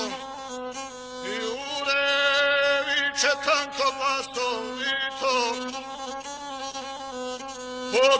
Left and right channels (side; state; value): both; identical; correlation 1.00